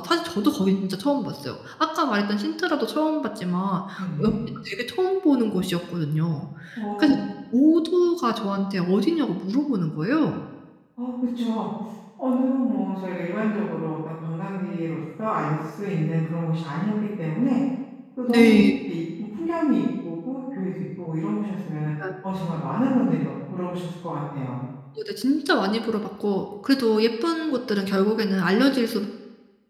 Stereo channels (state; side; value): identical; both; correlation 1.00